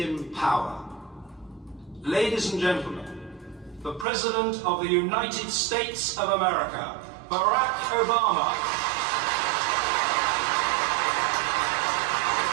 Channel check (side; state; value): left; drops out; at 4.0 s